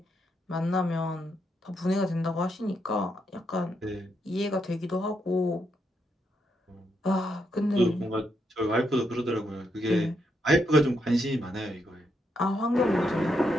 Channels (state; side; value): normal; both; correlation 0.79